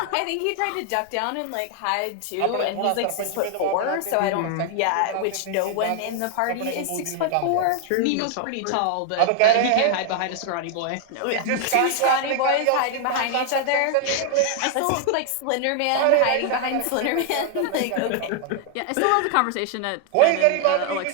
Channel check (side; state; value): both; different; correlation 0.00